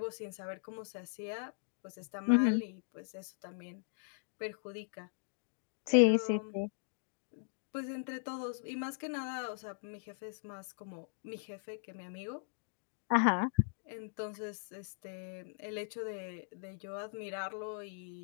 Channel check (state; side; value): silent; right; digital silence